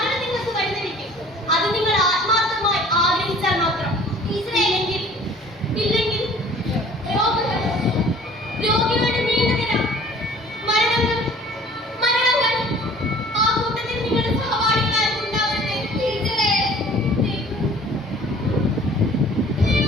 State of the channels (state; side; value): normal; both; correlation 0.50